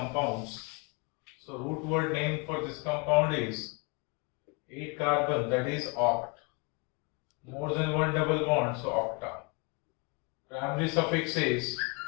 So root word name for this compound is 8 carbon, that is oct. More than one double bond, so octa. Primary suffix is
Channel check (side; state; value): right; quieter; 31.8 dB